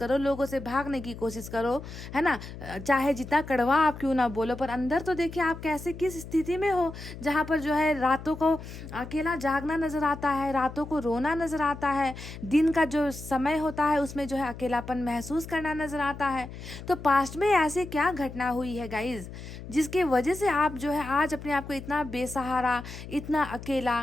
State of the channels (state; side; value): noise; left; hum, 12 dB below the sound